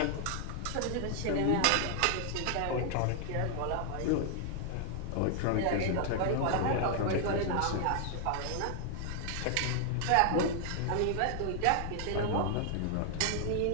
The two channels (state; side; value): different; both; correlation 0.00